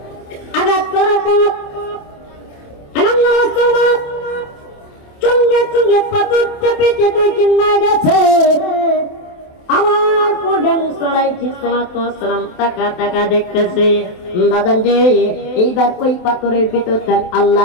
আঘাত করার পর চঙ্গে চঙ্গে পাথর চেপে চেপে চিন্না গেছে। আমার পরে মুসালাইহিস সালাম টাকা টাকা দেখতেছে। বাজান যে এইবার ওই পাথরের ভিতরে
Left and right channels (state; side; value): late; right; 27 ms